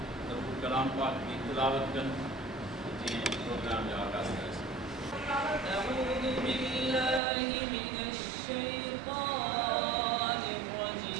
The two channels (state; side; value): drops out; left; at 7.2 s